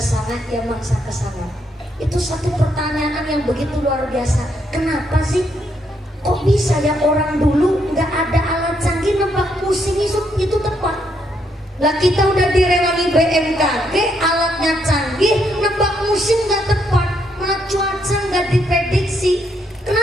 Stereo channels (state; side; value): normal; both; correlation 0.75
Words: ya mangsa kesangat. Itu satu pertanyaan yang begitu luar biasa. Kenapa sih kok bisa ya orang dulu nggak ada alat canggih nebak musim itu tepat? Lah kita udah direwangi BMKG, alatnya canggih, nebak musim nggak tepat, malah cuaca nggak diprediksi.